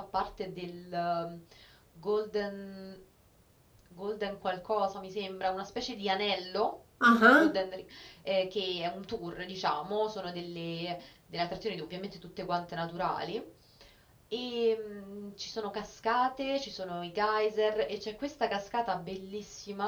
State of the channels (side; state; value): both; identical; correlation 1.00